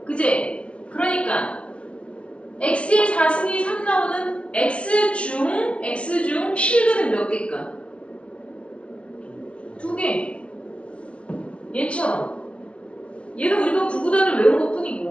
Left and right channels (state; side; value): late; right; 0.061 ms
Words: 그지? 그러니까 x의 4승이 3 나오는 x 중 실근은 몇 개일까? 2개. 얘처럼. 얘는 우리가 구구단을 외운 것